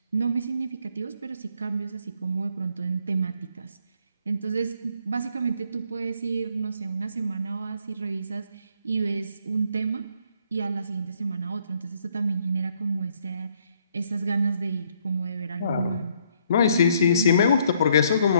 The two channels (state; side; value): inverted; both; correlation -0.68